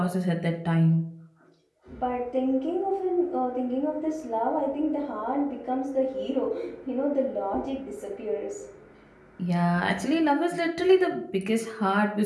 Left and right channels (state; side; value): identical; both; correlation 1.00